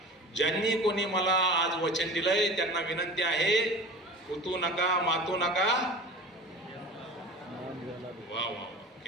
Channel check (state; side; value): normal; both; correlation 0.37